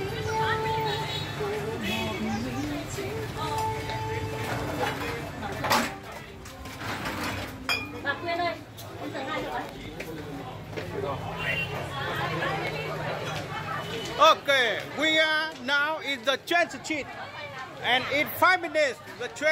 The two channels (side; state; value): both; identical; correlation 1.00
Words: Bà Quyên ơi, em tới ngay rồi. Okay, we are now in the train street. And in 5 minutes, the